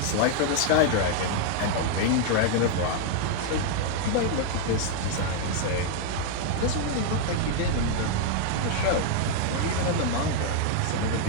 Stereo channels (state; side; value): different; both; correlation 0.00